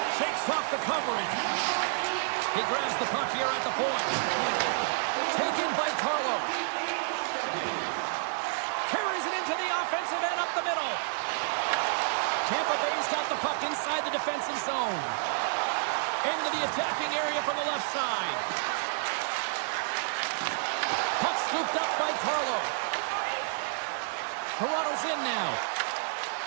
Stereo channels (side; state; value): left; silent; digital silence